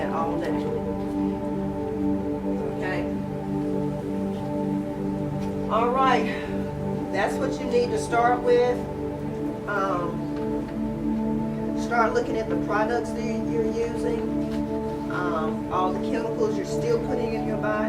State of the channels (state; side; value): identical; both; correlation 1.00